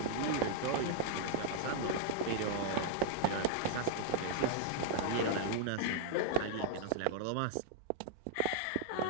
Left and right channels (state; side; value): different; both; correlation -0.01